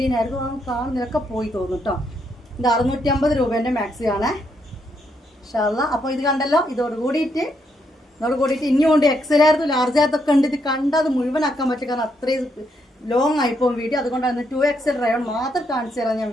ആയിരുന്നു, കാണുന്നതൊക്കെ പോയി തോന്നും കേട്ടോ. ഇത് 650 രൂപേന്റെ മാക്സിയാണ് ഇൻഷാല്ലാ. അപ്പോൾ ഇത് കണ്ടല്ലോ, ഇതോട് കൂടിയിട്ട് ഇനിയും കൊണ്ട് XL ആയിരുന്നു, ലാർജ് ആയിരത്തൊക്കെ ഉണ്ട്. ഇത് കണ്ടാൽ അത് മുഴുവനാക്കാൻ പറ്റും, കാരണം അത്രയും ലോങ് ആയിപ്പോവും വീഡിയോ. അതുകൊണ്ടാണ് 2XL റയോൺ മാത്രം കാണിച്ചു തരാൻ ഞാൻ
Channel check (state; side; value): normal; both; correlation 0.77